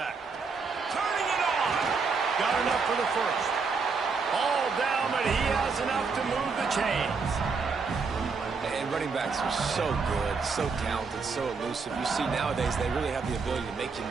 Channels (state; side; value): quieter; left; 4.8 dB